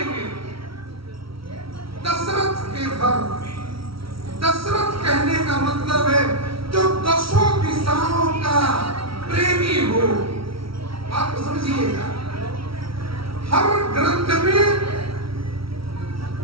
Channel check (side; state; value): left; late; 0.75 ms